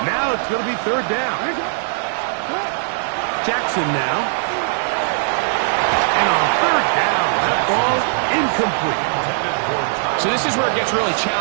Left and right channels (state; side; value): silent; left; digital silence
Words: Now it's going to be 3rd down. Jackson now. And on 3rd down, that ball incomplete. So this is where it gets really